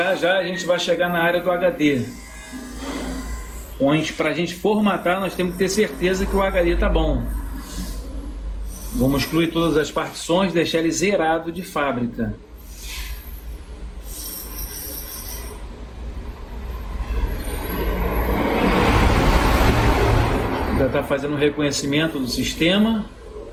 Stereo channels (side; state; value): both; identical; correlation 1.00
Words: já a gente vai chegar na área do HD. Onde para a gente formatar nós temos que ter certeza que o HD está bom. Vamos excluir todas as partições, deixar ele zerado de fábrica. Já está fazendo o reconhecimento do sistema.